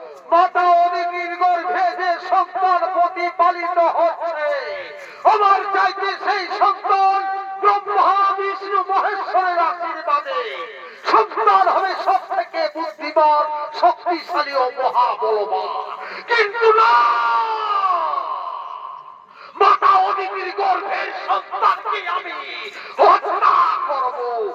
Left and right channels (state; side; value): identical; both; correlation 1.00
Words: মাতা অদিতির গর্ভে যে সন্তান প্রতিপালিত হচ্ছে, আমার চাইতে সেই সন্তান ব্রহ্মা বিষ্ণু মহেশ্বরের আশীর্বাদে সন্তান হবে সব থেকে বুদ্ধিমান, শক্তিশালী ও মহাবলবান। কিন্তু না, মাতা অদিতির গর্ভের সন্তানকে আমি হত্যা করব।